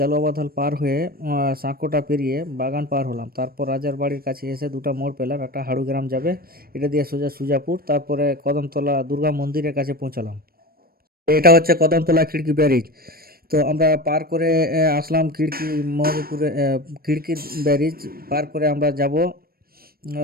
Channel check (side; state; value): left; late; 0.44 ms